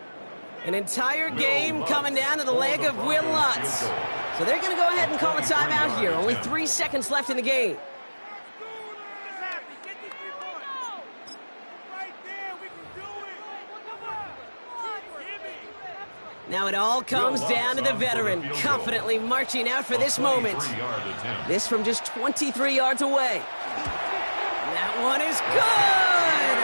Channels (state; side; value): inverted; both; correlation -1.00